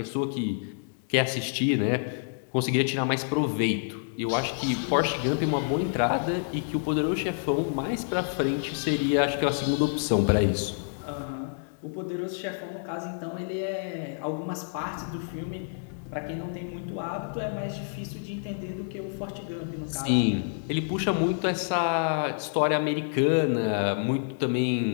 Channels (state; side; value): silent; right; digital silence